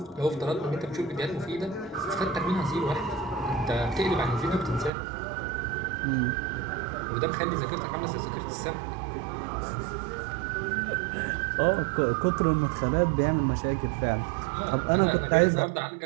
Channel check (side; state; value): left; drops out; at 4.9 s